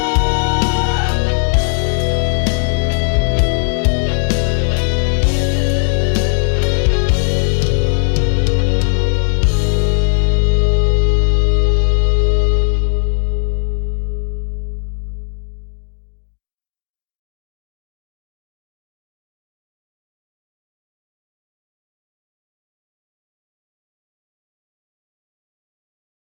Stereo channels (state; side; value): silent; right; digital silence